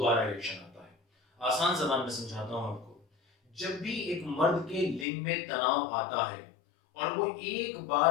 इरेक्शन आता है। आसान जबान में समझाता हूं आपको। जब भी एक मर्द के लिंग में तनाव आता है और वो एक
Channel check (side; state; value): right; drops out; at 5.1 s